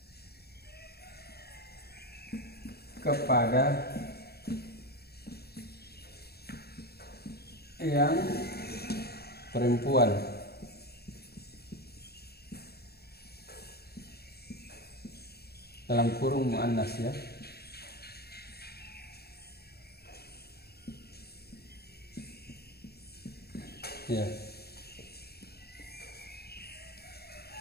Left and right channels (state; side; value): late; right; 0.46 ms